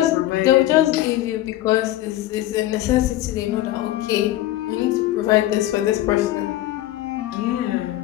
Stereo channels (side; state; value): right; quieter; 14.7 dB